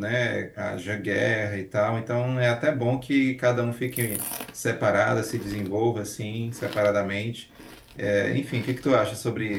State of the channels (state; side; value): identical; both; correlation 1.00